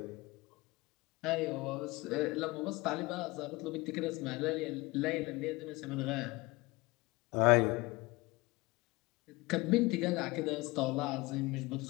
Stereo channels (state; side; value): quieter; right; 22.6 dB